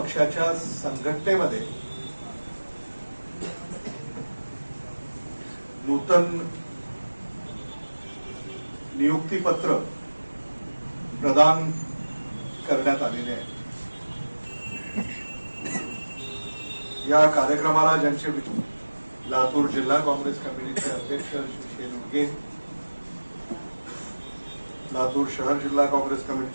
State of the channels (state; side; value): inverted; both; correlation -1.00